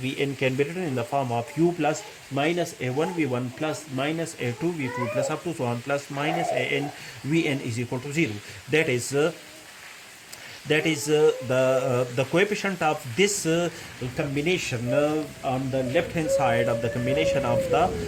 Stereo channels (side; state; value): both; identical; correlation 1.00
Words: can be written in the form of U plus minus A1 V1 plus minus A2 V2 plus up to so on plus minus An Vn is equal to 0. That is the coefficient of this combination on the left hand side of the combination of the